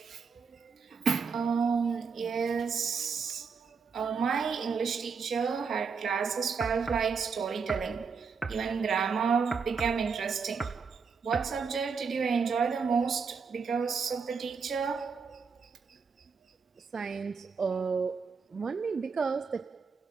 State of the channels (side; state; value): left; quieter; 5.6 dB